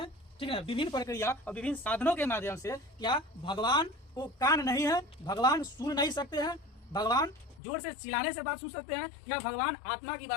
ठीक है, विभिन्न प्रक्रिया और विभिन्न साधनों के माध्यम से। क्या भगवान को कान नहीं है? भगवान सुन नहीं सकते हैं? भगवान जोर से चिल्लाने से बात सुन सकते हैं? या भगवान आत्मा की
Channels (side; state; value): right; drops out; at 7.6 s